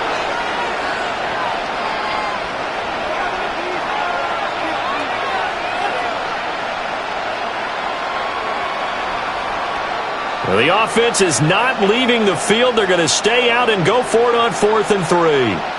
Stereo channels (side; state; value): both; identical; correlation 1.00